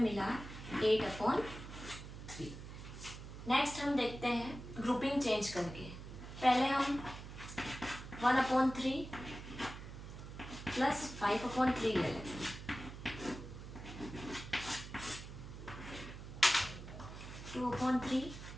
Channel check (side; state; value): right; noise; hum, 11 dB below the sound